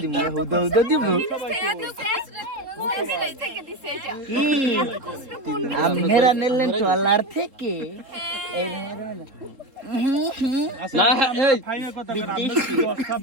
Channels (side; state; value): left; late; 3.8 ms